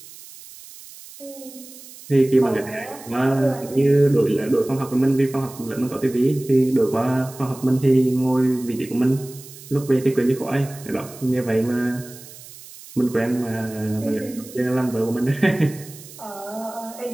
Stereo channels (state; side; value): noise; right; hiss, 18 dB below the sound